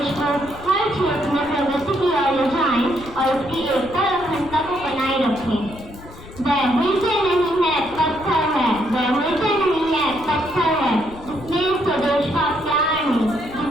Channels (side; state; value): left; noise; rumble, 17 dB below the sound